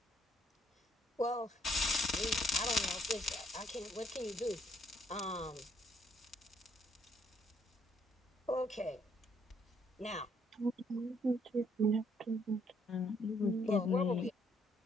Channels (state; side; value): normal; both; correlation 0.68